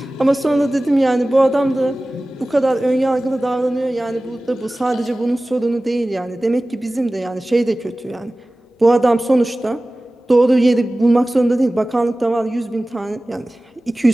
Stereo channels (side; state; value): both; normal; correlation 0.97